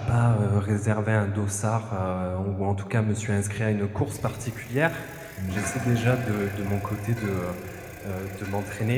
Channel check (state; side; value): identical; both; correlation 1.00